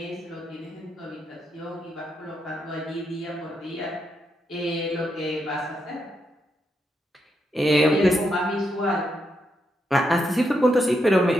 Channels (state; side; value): normal; both; correlation 0.81